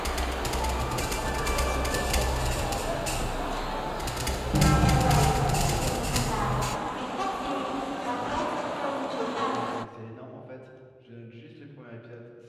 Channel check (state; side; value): identical; both; correlation 1.00